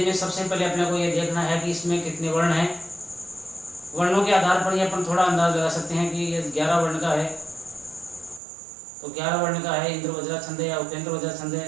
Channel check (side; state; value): left; drops out; at 8.4 s